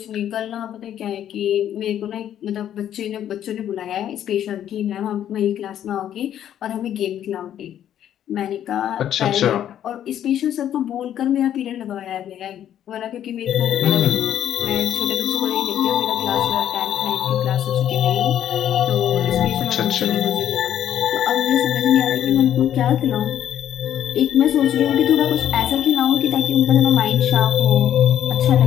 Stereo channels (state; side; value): quieter; right; 10.6 dB